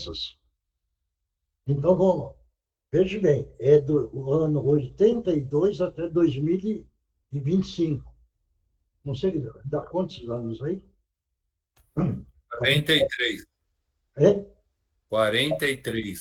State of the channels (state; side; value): identical; both; correlation 1.00